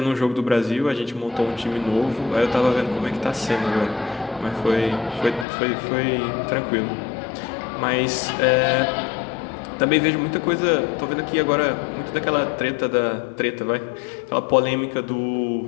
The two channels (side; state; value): right; drops out; at 5.5 s